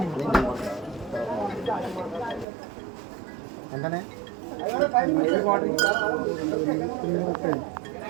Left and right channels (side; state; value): left; drops out; at 2.5 s